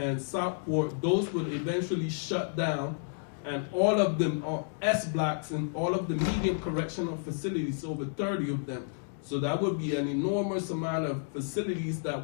Southport, those would eventually shut down, and all of them are S blocks and all of the medium correctional facilities, over 30 of them. So that would be an enormous amount of facilities that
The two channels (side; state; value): right; silent; digital silence